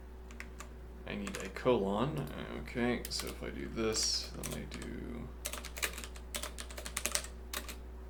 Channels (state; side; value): identical; both; correlation 1.00